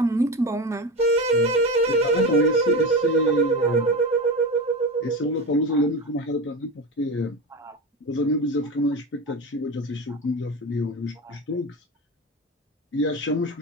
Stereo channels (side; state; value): both; normal; correlation 0.22